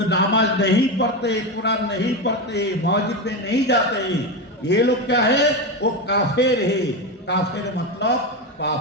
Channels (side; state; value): both; normal; correlation 0.15